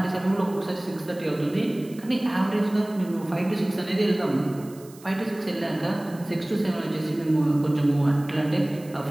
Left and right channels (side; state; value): right; noise; hiss, 23 dB below the sound